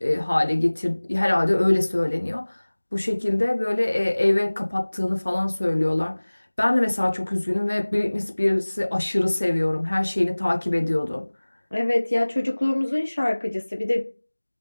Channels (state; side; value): inverted; both; correlation -1.00